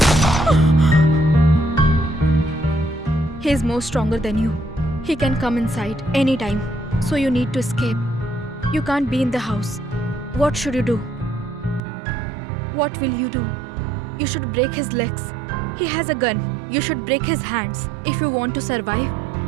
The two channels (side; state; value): left; drops out; at 11.8 s